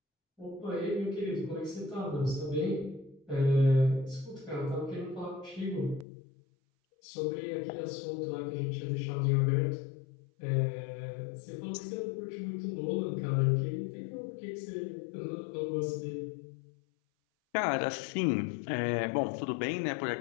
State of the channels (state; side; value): drops out; right; at 6.1 s